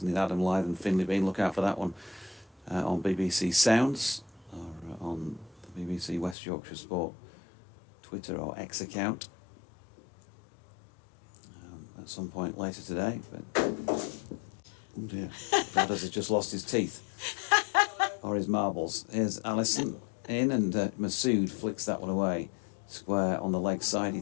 in Adam Lyth and Finley Bean. Look out for that one on BBC Sounds or on the BBC West Yorkshire Sport Twitter or X account at some point later today. But oh dear, Brad has just lost his teeth or his marbles. Here's Allison in, and Masood flicks that one away. Square on the leg side. He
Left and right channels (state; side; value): drops out; right; at 6.4 s